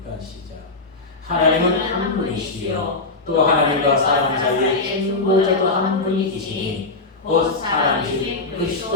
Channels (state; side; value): quieter; right; 3.5 dB